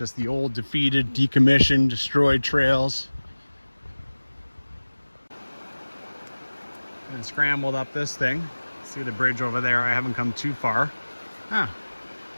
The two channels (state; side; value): inverted; both; correlation -1.00